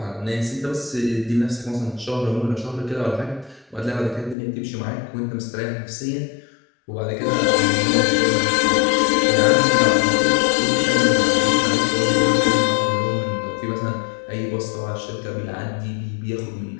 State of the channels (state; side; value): drops out; right; at 4.4 s